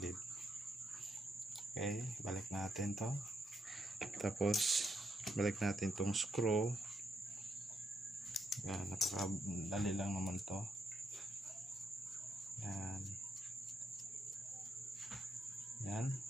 Okay, balik natin to. Tapos balik natin tong screw. Yan, napakadali lang naman to. Yan. Yan.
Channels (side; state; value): both; normal; correlation 0.78